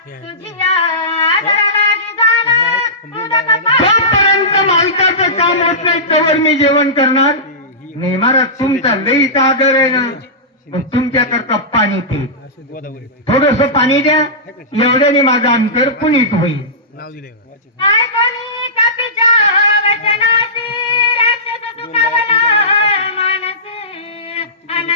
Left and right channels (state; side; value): normal; both; correlation -0.18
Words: तुझी आदर लागी जाणं उदक पाहणं. जोपर्यंत मालकाचं काम होत नाही तोवर मी जेवण करणार नाही. महाराज तुमचा लईचा आदर आहे ना, पण तुमच्याकरता पाणी पे, थोडस पाणी द्या, एवढ्याने माझं अंतर पुनीत होईल. काय कोणी कपीच्या वचनाची राक्षस सुखावला मानसी,